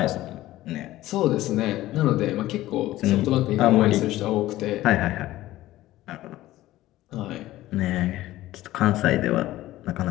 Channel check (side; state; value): right; quieter; 15.8 dB